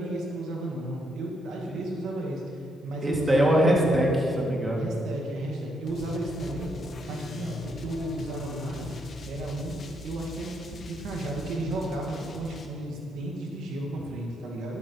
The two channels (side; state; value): both; normal; correlation 0.76